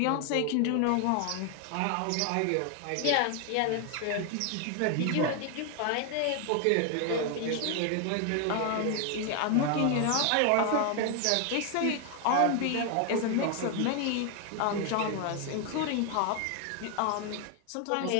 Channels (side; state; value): both; different; correlation 0.01